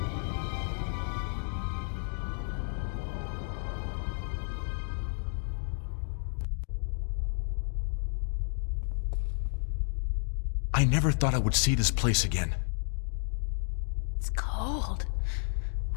I never thought I would see this place again. It's cold.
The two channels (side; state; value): right; silent; 56 dB below the other